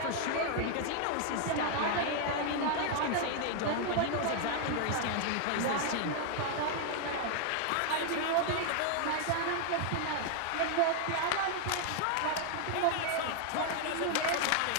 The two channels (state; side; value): different; both; correlation 0.00